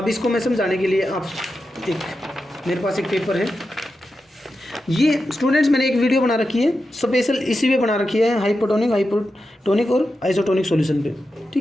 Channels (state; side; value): normal; both; correlation 0.90